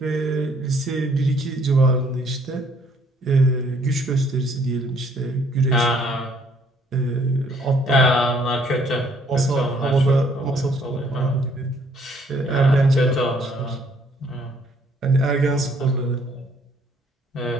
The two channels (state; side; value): normal; both; correlation 0.63